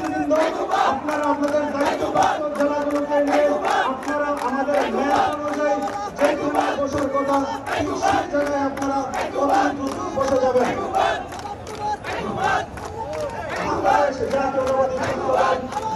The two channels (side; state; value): both; identical; correlation 1.00